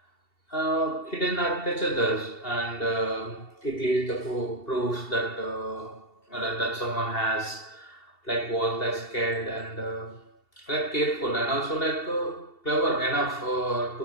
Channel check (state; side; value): late; right; 2.7 ms